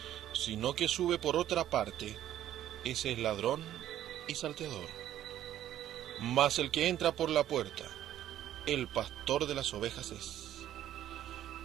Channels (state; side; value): quieter; left; 12.0 dB